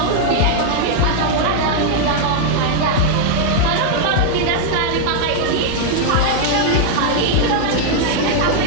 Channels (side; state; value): both; different; correlation 0.00